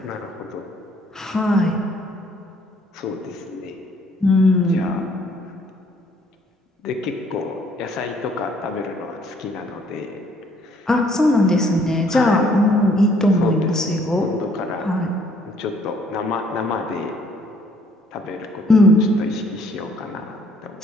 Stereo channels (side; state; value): both; normal; correlation 0.63